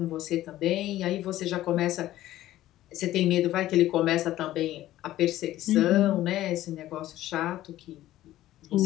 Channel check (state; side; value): quieter; right; 14.5 dB